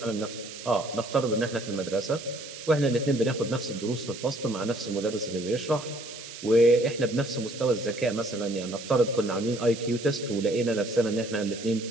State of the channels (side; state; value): right; noise; hiss, 13 dB below the sound